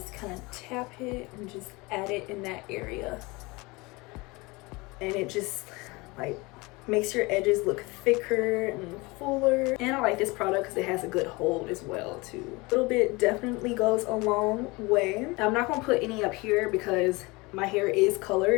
kind of tap it and just add it in that area. And it just like makes your edges look thicker and fuller. And I like this product because it has a good hold as well too. A little bit definitely goes a long way. Now, I'm not going to put any up here because my hair is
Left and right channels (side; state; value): right; quieter; 24.5 dB